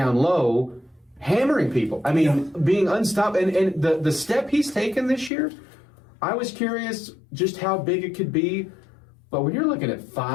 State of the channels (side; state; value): right; drops out; at 5.3 s